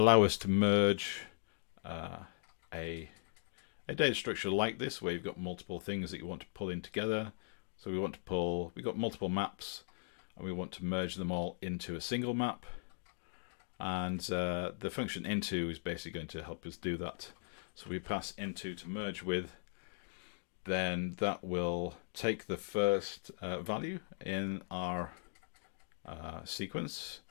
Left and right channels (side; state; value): right; silent; digital silence